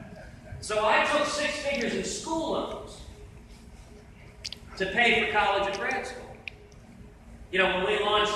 So I took 6 figures in school loans to pay for college and grad school. You know, when we launched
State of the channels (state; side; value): identical; both; correlation 1.00